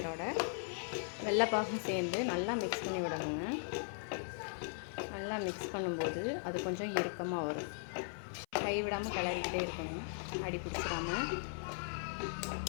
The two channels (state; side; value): silent; right; 52 dB below the other